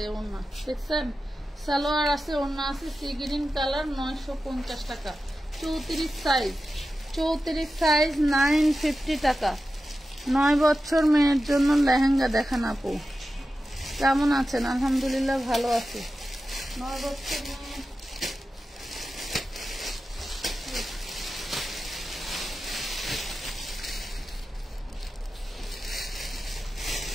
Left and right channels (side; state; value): both; normal; correlation 0.92